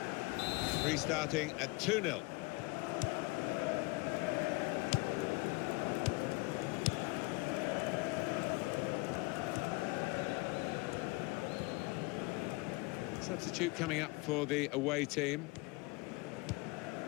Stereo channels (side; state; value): right; quieter; 25.2 dB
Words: Restarting at 2-0. Substitute coming up for the away team.